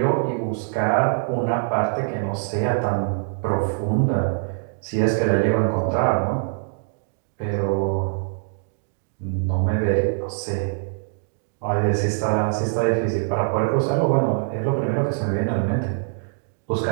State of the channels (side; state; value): left; silent; digital silence